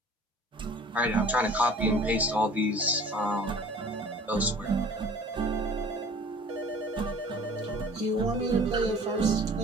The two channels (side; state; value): both; normal; correlation 0.48